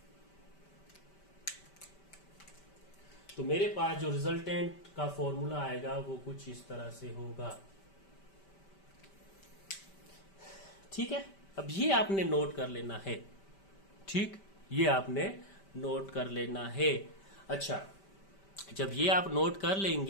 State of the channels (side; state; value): right; late; 5.1 ms